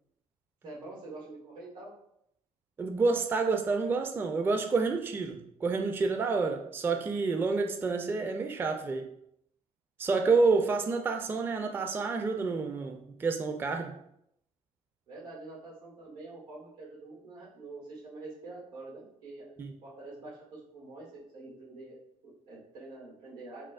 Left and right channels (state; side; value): quieter; left; 3.7 dB